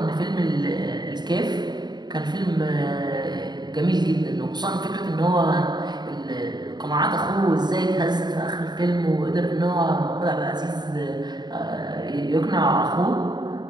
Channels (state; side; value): late; left; 0.21 ms